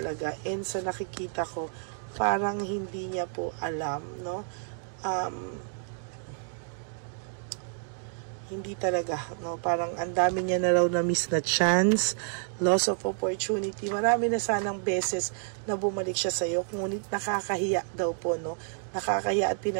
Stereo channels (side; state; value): left; silent; 58 dB below the other